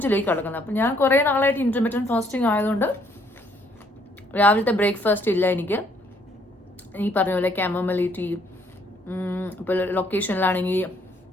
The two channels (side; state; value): both; normal; correlation 0.66